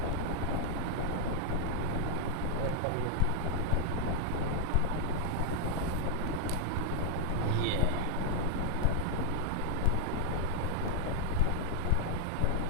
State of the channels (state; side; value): different; both; correlation -0.01